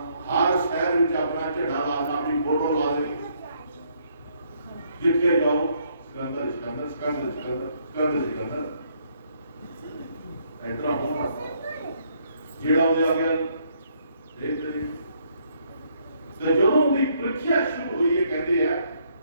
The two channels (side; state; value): both; inverted; correlation -0.70